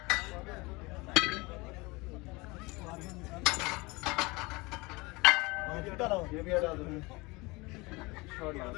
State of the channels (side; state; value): right; quieter; 24.3 dB